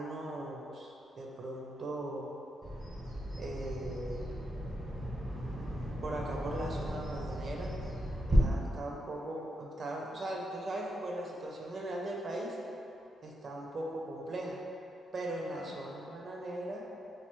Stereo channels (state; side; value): normal; both; correlation 0.85